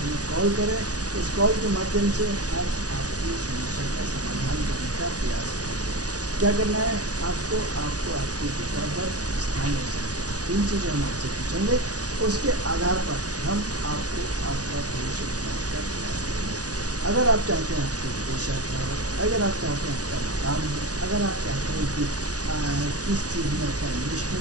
हमें कॉल करें। उस कॉल के माध्यम से हम आपकी समस्या का समाधान करने का प्रयास करेंगे। क्या करना है आपको आपकी डेट ऑफ बर्थ, स्थान और समय, 3 चीज़ें हम आपसे पूछेंगे। उसके आधार पर हम आपको आपका भविष्य बताने का प्रयास करेंगे। अगर आप चाहते हैं आपकी विदेश यात्रा हो, अगर आप चाहते हैं आपका मकान हो, अगर आप चाहते हैं कि किस चीज़ में अपना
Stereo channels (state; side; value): late; left; 0.67 ms